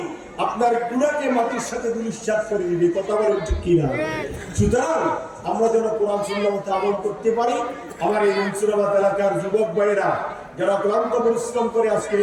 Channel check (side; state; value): both; identical; correlation 1.00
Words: আপনার গুনাহকে মাটির সাথে দুলিশাত করে দিবে। কথা বলেন ঠিক কি না? সুতরাং আমরা যেন কোরআন সুন্নাহ মতো আমল করতে পারি। আমার এই মনসুরাবাদ এলাকার যুবক ভাইয়েরা যারা ক্লান্ত পরিশ্রম করে আজকে